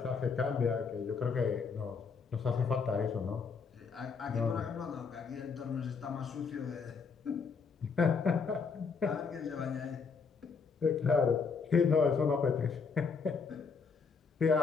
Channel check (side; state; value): right; quieter; 5.3 dB